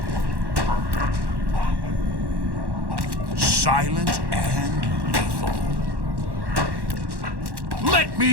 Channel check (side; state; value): left; late; 1.1 ms